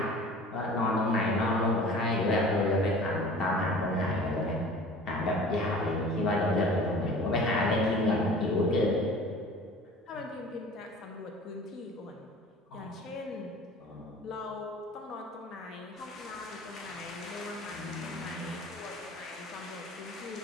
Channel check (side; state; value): both; normal; correlation 0.43